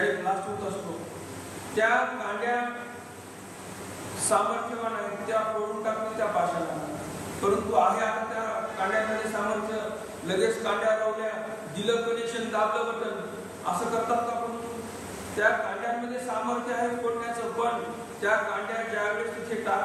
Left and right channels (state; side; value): identical; both; correlation 1.00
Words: ब्लास्ट होत असतो, त्या कांड्या सामर्थ्यवान आहेत, त्या फोडून टाकतील त्या पाशाला. परंतु आहे आता त्या कांड्यामध्ये सामर्थ्य, लगेच कांड्या लावल्या, दिलं कनेक्शन, दाबलं बटन, असं करतात का. पण त्या कांड्यांमध्ये सामर्थ्य आहे फोडण्याचं, पण त्या कांड्या ज्यावेळेस तिथे